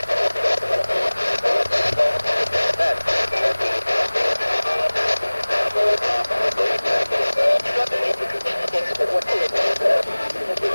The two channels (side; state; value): both; inverted; correlation -1.00